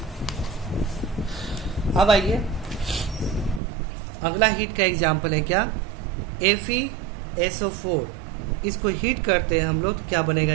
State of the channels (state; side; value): drops out; left; at 3.6 s